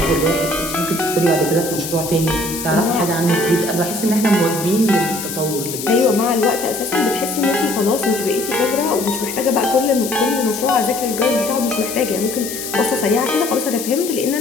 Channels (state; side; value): noise; left; hiss, 7 dB below the sound